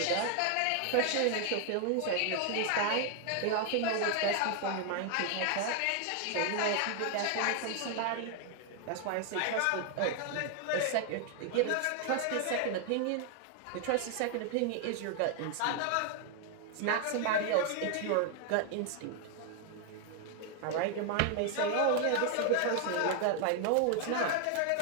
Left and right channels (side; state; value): both; different; correlation 0.00